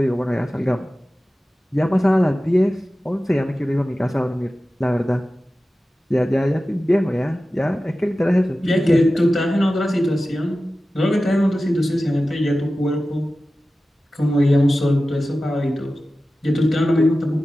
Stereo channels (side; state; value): both; normal; correlation 0.95